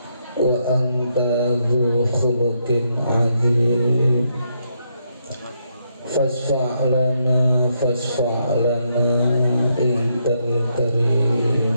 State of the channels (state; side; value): inverted; both; correlation -0.78